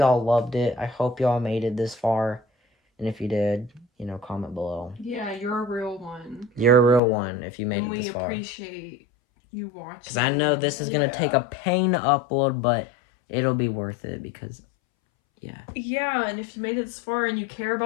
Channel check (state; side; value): drops out; right; at 7.0 s